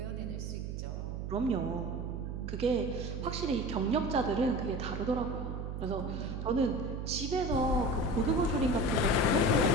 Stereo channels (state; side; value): noise; right; hum, 5 dB below the sound